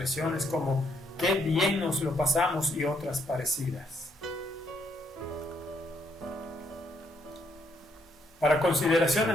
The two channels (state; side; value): normal; both; correlation 0.72